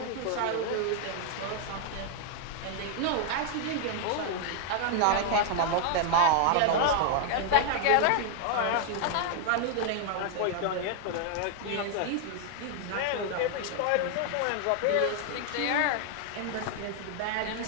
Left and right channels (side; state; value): both; different; correlation 0.00